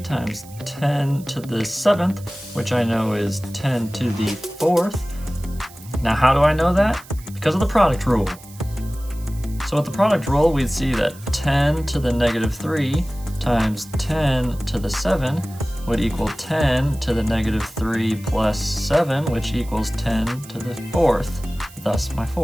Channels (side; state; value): right; noise; hiss, 21 dB below the sound